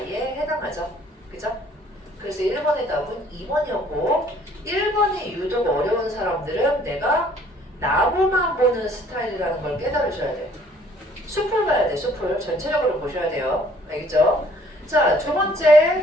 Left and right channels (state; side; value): normal; both; correlation 0.59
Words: 해당하죠. 그죠? 그래서 1번의 답은 2번이었고, 1번이 유독 어려운 사람들은 내가 나무만 보는 스타일이라는 걸 깨달으셔야 돼. 숲을 봐야 돼. 숲을 전체적으로 보셔야 돼요. 알겠죠? 자, 두